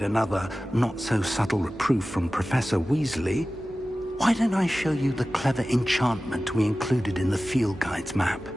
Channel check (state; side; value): normal; both; correlation 0.96